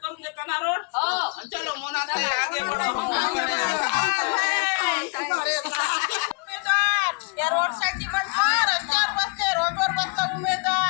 करून देता ना रोड. चलो मोनात आगे बढ़ो. या रोड साठी म्हटलं रस्त्यावर बसले, रोडवर बसला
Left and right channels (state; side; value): quieter; right; 31.4 dB